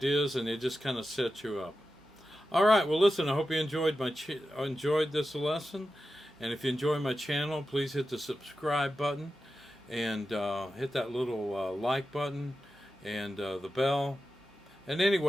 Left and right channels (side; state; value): both; normal; correlation 0.92